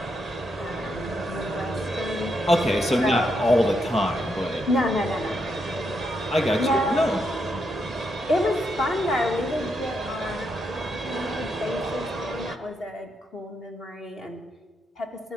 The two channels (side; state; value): both; normal; correlation 0.80